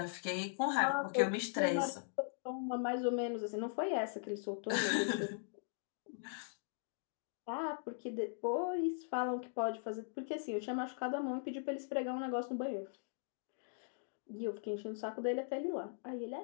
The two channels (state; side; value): silent; right; digital silence